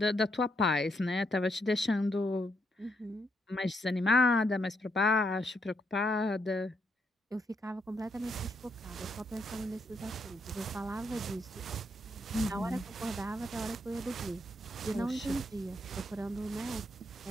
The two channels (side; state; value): both; normal; correlation 0.77